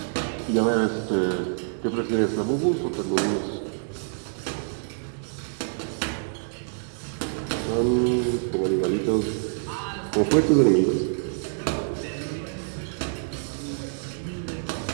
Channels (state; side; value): silent; left; digital silence